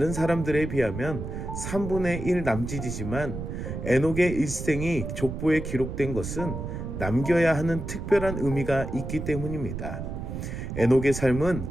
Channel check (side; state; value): right; noise; rumble, 6 dB below the sound